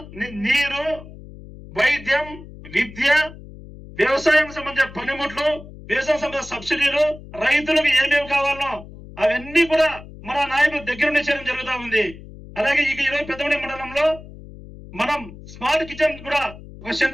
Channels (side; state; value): left; noise; hum, 16 dB below the sound